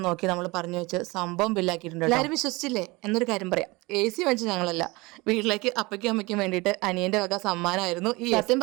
നോക്കി നമ്മൾ പറഞ്ഞു വെച്ച് സംഭവം ബില്ലാക്കിയിട്ടുണ്ട്. എല്ലാവരും വിശ്വസിച്ചില്ലേ? എന്നൊരു കാര്യം പറയാം, എ സി വാങ്ങിച്ച് ഞങ്ങളല്ല, വീട്ടിലേക്ക് അപ്പയ്ക്കും അമ്മയ്ക്കും വേണ്ടിയിട്ട് അനിയന്റെ വക സമ്മാനമായിരുന്നു ഈ. സത്യം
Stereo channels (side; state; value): left; quieter; 23.4 dB